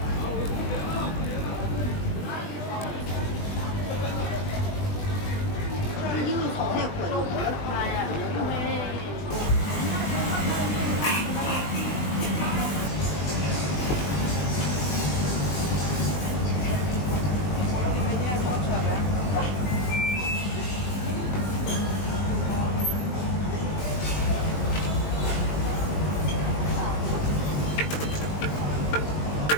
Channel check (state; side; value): late; right; 20 ms